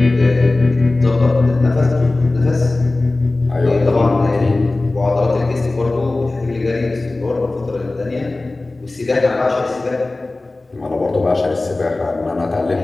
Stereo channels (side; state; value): right; quieter; 3.1 dB